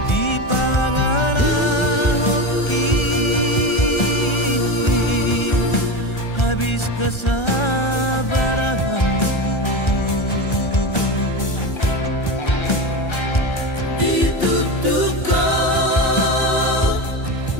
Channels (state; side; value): late; right; 1.3 ms